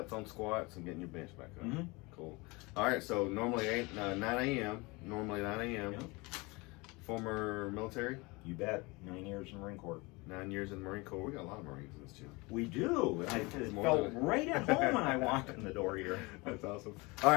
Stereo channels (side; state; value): right; quieter; 25.3 dB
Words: on squats and getting your bench back up. Mm-hmm. Cool. All right, so normally 9 a.m. Yep. Former military? You bet. 9 years in the Marine Corps. 9 years in the Marine Corps. We got a lot of Marines in this gym. We do. I felt right at home when I walked in the door here. That's awesome. All